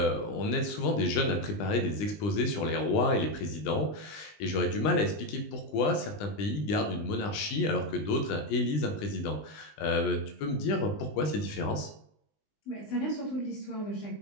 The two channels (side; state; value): right; late; 20 ms